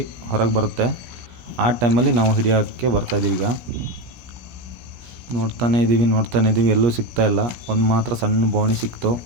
ಹೊರಗೆ ಬರುತ್ತೆ. ಆ ಟೈಮಲ್ಲಿ ನಾವು ಹಿಡಿಯೋಕ್ಕೆ ಬರ್ತಾಯಿದ್ದೀವಿ. ಈಗ ನೋಡ್ತಾನೇ ಇದ್ದೀವಿ, ಎಲ್ಲೂ ಸಿಗ್ತಾ ಇಲ್ಲ. ಒಂದು ಮಾತ್ರ ಸಣ್ಣ ಬೋಣಿ ಸಿಕ್ತು.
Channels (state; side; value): late; left; 16 ms